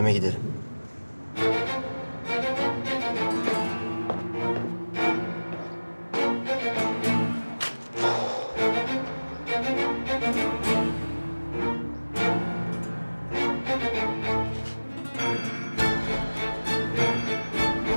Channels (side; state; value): both; inverted; correlation -1.00